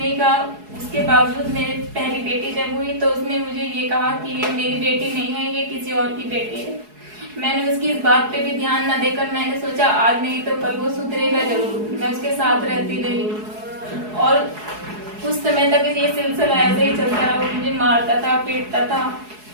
कहा। उसके बावजूद मेरी पहली बेटी जब हुई तो उसने मुझे ये कहा कि ये मेरी बेटी नहीं है, ये किसी और की बेटी है। मैंने उसकी इस बात पे भी ध्यान न देकर मैंने सोचा आज नहीं तो कल वो सुधरेगा जरूर। मैं उसके साथ रहती रही और कुछ समय तक ये सिलसिला ऐसे ही चलता रहा। वो मुझे मारता था, पीटता था।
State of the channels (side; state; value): left; late; 4.7 ms